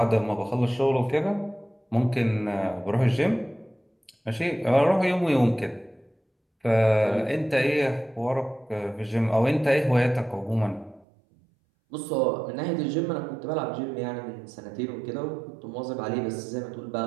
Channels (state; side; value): drops out; left; at 11.1 s